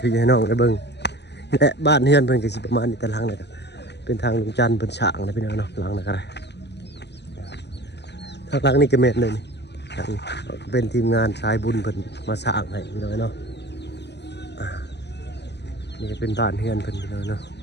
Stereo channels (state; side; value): late; right; 0.50 ms